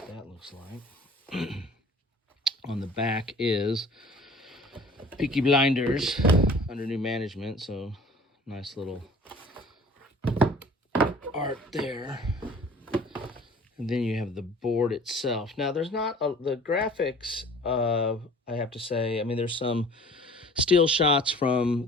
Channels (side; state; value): both; normal; correlation 0.48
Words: that looks like. On the back is Peaky Blinders under new management, so nice little art there. And then you have the board itself. Now, there's not the graphics, I have to say. I mean, there's some still shots from